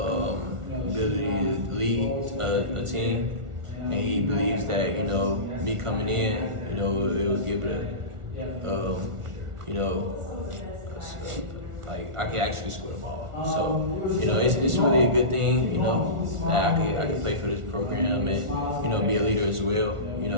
ability to lead a team, and he believes that me coming in, it would give it like I can actually score the ball. So it's really a good thing, that I could play for this program and be a leader as well.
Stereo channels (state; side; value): late; left; 1.4 ms